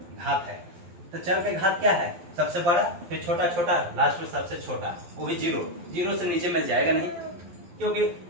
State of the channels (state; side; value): late; left; 12 ms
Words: घात है। तो चर का घात क्या है, सबसे बड़ा, फिर छोटा छोटा, लास्ट में सबसे छोटा, वो भी जीरो। जीरो से नीचे में जाएगा नहीं, क्योंकि